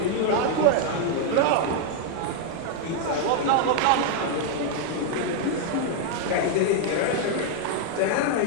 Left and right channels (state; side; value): different; both; correlation 0.00